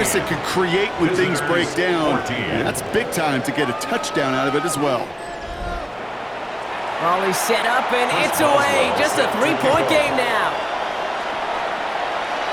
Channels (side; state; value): both; identical; correlation 1.00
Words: that can create when things break down. And that's big time to get a touchdown out of it as well. Ball is set up, and it's away. Just a 3-point game now.